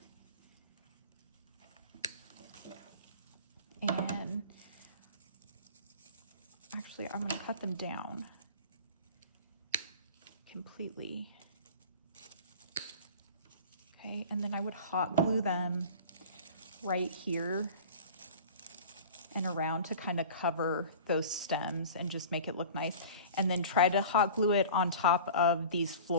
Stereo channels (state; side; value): inverted; both; correlation -0.39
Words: And actually I'm going to cut them down completely. Okay, and then I would hot glue them right here and around to kind of cover those stems and just make it look nice. And then try to hot glue it on top of these